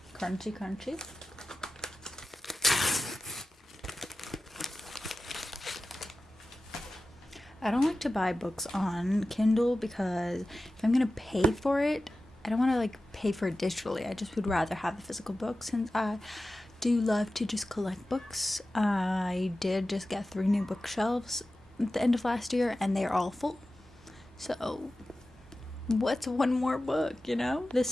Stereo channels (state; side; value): normal; both; correlation 0.94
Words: Crunchy, crunchy. I don't like to buy books on Kindle because if I'm gonna pay for it, I don't want to like pay for it digitally. I just would rather have the physical book since I do love to just collect books. I did just get 3 new bookshelves at the end of last year and they're all full. So what's one more book, you know?